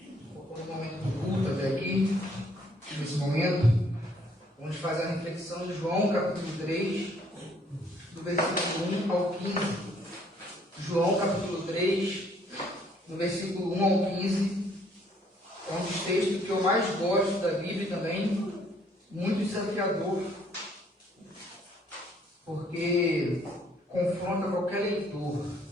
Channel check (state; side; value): normal; both; correlation 0.64